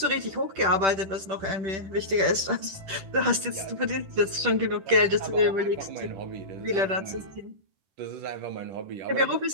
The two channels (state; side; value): late; left; 10 ms